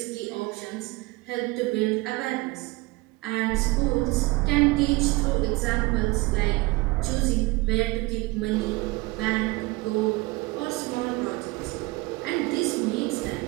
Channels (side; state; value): left; quieter; 22.6 dB